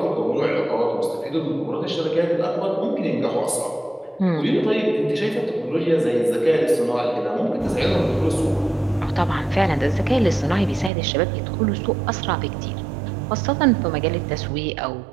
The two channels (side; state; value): left; drops out; at 10.9 s